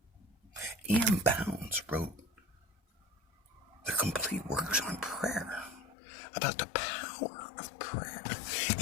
E.M. Bounds wrote The Complete Works on Prayer, about the power of prayer.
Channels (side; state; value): right; drops out; at 6.0 s